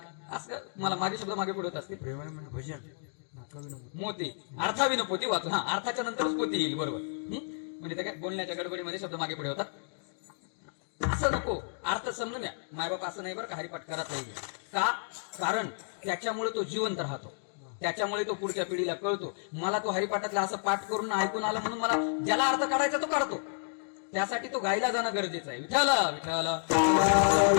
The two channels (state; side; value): silent; right; digital silence